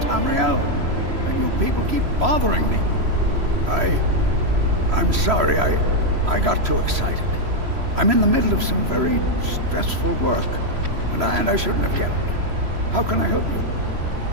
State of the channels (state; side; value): late; left; 3.0 ms